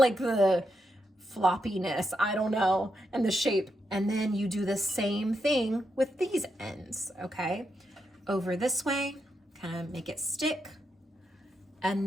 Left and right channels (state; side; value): normal; both; correlation 0.83